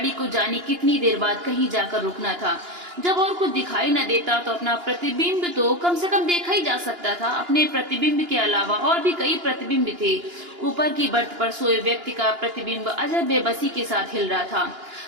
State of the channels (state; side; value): late; left; 2.9 ms